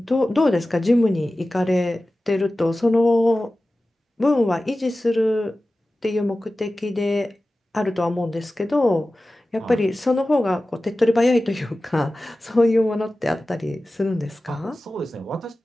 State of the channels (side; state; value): both; normal; correlation 0.96